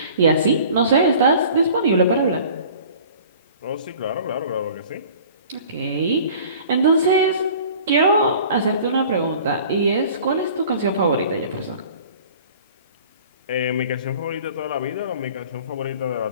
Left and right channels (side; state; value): both; inverted; correlation -0.47